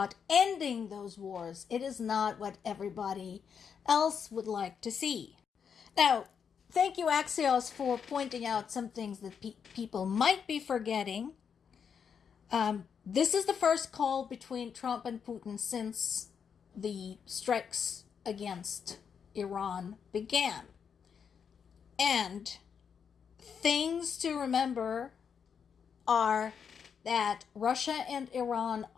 ending those wars, it is not what everybody else would like to see. Now, thank you, Axios, for pointing out some things that people might be forgetting. This is the first call between Trump and Putin since the strikes against Iran began. And things to remember are that Russia and Iran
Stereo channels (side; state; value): right; quieter; 7.0 dB